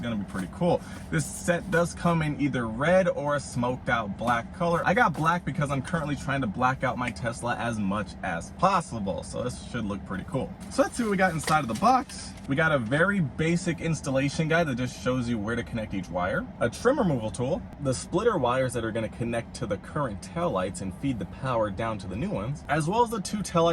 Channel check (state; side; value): identical; both; correlation 1.00